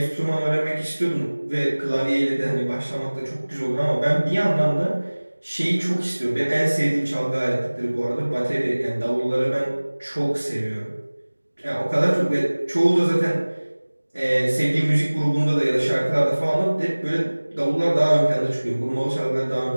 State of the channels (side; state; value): both; inverted; correlation -1.00